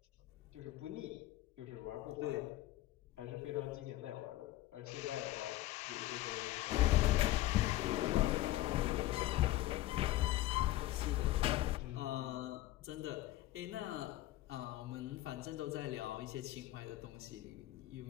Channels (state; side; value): quieter; right; 15.9 dB